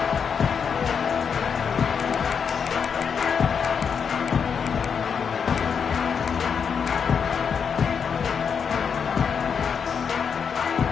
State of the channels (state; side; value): quieter; right; 6.7 dB